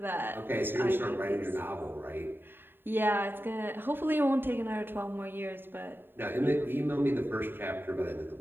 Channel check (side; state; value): left; late; 0.099 ms